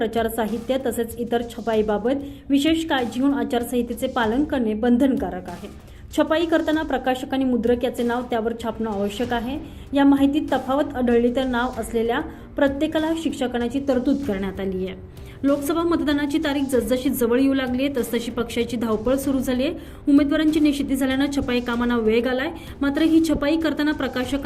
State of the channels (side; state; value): both; identical; correlation 1.00